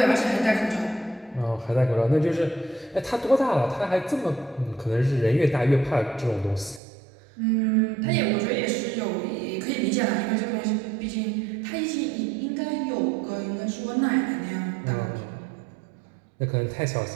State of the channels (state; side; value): drops out; left; at 6.8 s